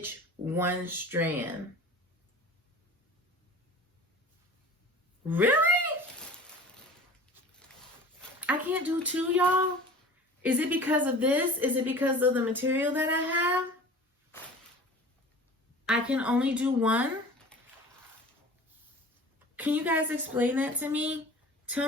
1 strand. Really? I can't do 2, y'all? Is it because of this? Is it because of the material that I have? I can only do 1? Can you guys explain that to me?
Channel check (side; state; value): both; normal; correlation 0.41